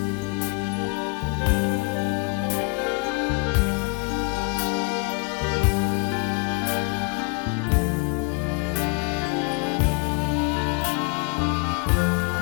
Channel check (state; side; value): quieter; right; 31.4 dB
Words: គេចង់ហាលថ្ងៃដៃជាប់កំណបងអត់បា